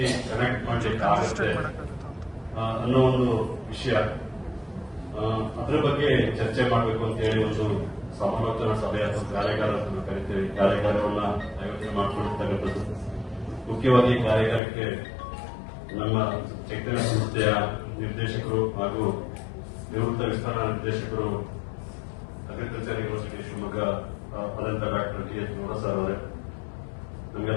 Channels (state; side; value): drops out; right; at 14.6 s